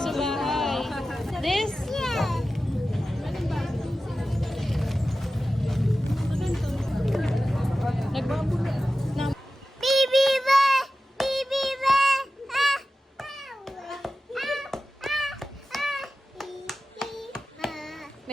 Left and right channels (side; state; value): both; normal; correlation 0.94